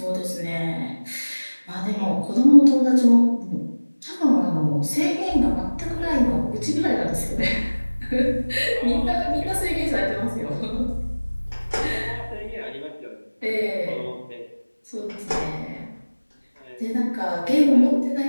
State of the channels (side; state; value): both; inverted; correlation -1.00